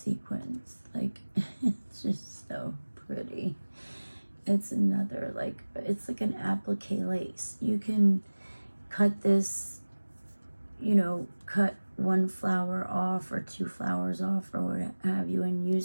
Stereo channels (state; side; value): inverted; both; correlation -1.00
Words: Like, it's just so pretty. It's another, like, it's like an applique lace. You can cut this, you know, cut one flower off or two flowers off or what have you, and